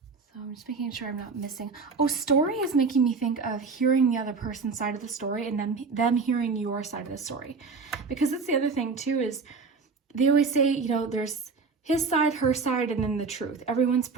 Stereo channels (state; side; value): quieter; left; 4.7 dB